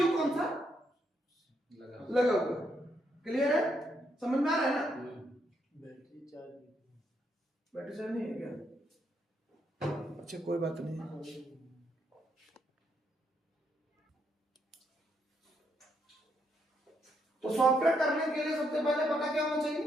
कौन सा लगा हुआ है। क्लियर है, समझ में आ रहा है ना? बैटरी चार्ज नहीं है क्या? अच्छा, कोई बात नहीं। तो सॉफ्टवेयर करने के लिए सबसे पहले पता क्या होना चाहिए,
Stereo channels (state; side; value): normal; both; correlation 0.76